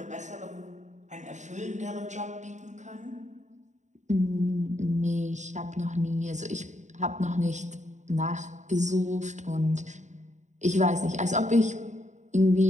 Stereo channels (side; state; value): left; late; 0.34 ms